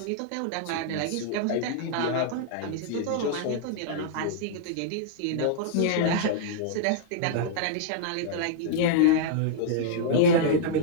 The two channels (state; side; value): different; both; correlation -0.02